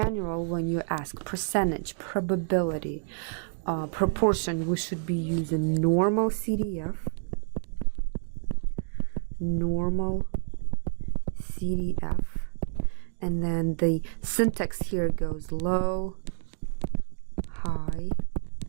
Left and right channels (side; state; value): left; silent; digital silence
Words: when you ask percentage, probability, proportion, we should be using normal CDF, and then the syntax here goes low, high,